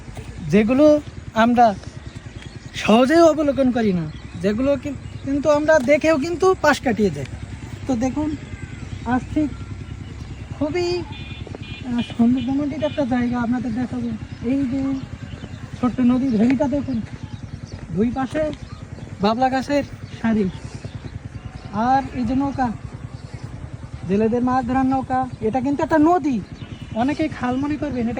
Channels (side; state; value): both; identical; correlation 1.00